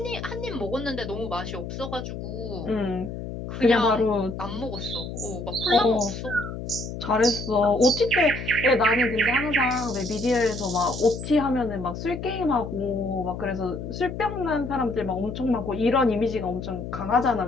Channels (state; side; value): noise; left; hum, 8 dB below the sound